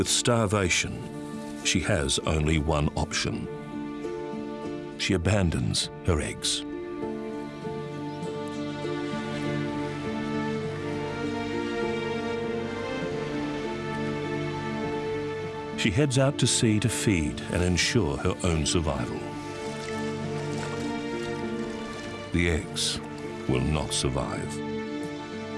starvation, she has only one option. She abandons her eggs. She heads out to sea to feed and ensure her own survival. The eggs will not survive.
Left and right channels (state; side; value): identical; both; correlation 1.00